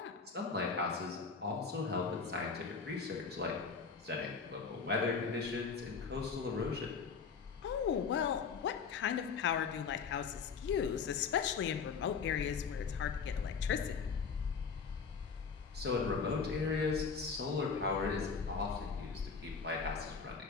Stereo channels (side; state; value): right; quieter; 5.6 dB